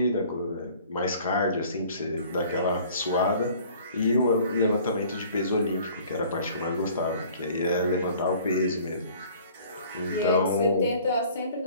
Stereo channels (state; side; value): inverted; both; correlation -0.51